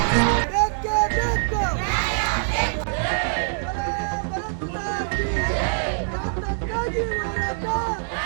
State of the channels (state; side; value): silent; left; digital silence